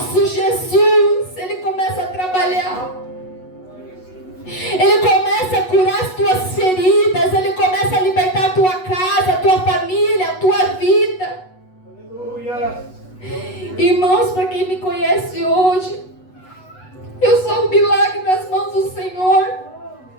Jesus, Ele começa a trabalhar. Ele começa a curar as tuas feridas. Ele começa a libertar a tua casa, a tua família, a tua vida. Aleluia. Irmãos, para quem me conhece hoje, eu sou um milagre nas mãos do Senhor.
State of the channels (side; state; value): right; late; 8.1 ms